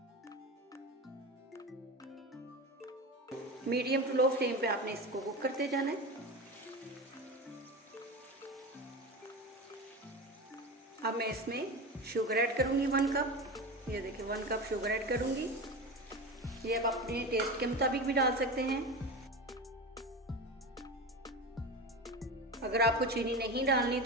मीडियम टू लो फ्लेम पे आपने इसको कुक करते जाना है। अब मैं इसमें शुगर ऐड करूँगी 1 कप। ये देखिए 1 कप शुगर ऐड करूँगी। ये आप अपने टेस्ट के मुताबिक भी डाल सकते हैं। अगर आपको चीनी नहीं डालनी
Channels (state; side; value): normal; both; correlation 0.25